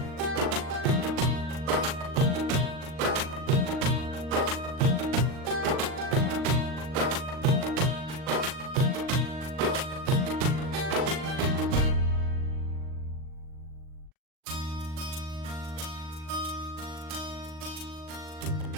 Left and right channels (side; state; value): left; late; 39 ms